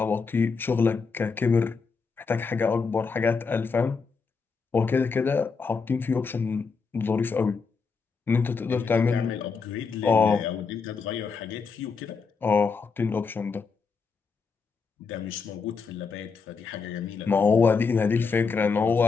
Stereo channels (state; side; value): quieter; right; 5.0 dB